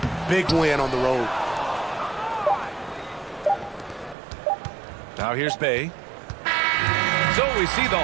Big win on the road. Now here's Bay. So we see the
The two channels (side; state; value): left; drops out; at 4.2 s